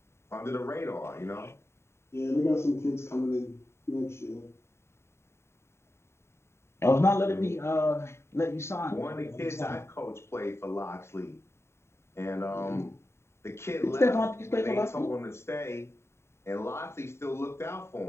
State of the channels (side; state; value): right; late; 0.13 ms